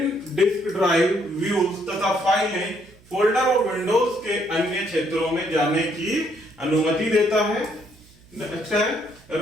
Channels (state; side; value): noise; right; hum, 27 dB below the sound